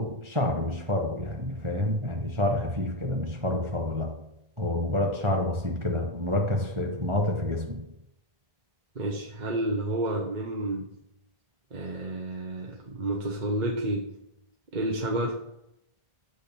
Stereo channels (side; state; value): left; late; 1.4 ms